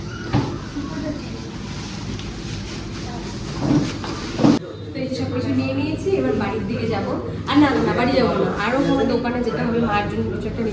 সব কিছু নিয়ে নিয়েছি, এবার বাড়ির দিকে যাবো। আর না না, বাড়ি যাবো না, আরও কোনো দোকানে যেতে হবে। মার জন্য কিছু একটা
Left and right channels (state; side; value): identical; both; correlation 1.00